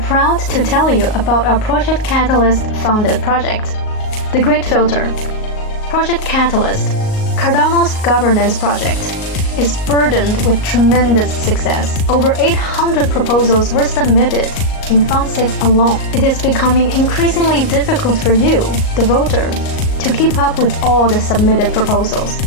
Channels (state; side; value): late; right; 38 ms